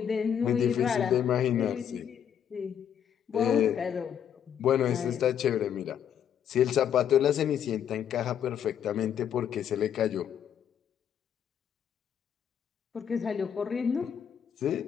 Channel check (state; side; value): quieter; right; 8.8 dB